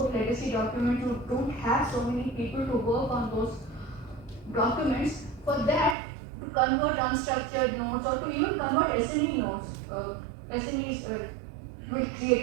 legacy documents. You don't have so many people to work on those documents. For that, to convert unstructured notes or to even convert SME notes, SMEs will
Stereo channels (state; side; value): drops out; left; at 6.0 s